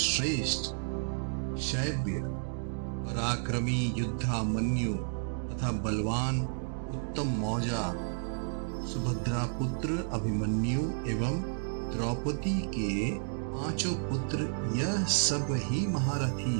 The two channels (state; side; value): silent; left; digital silence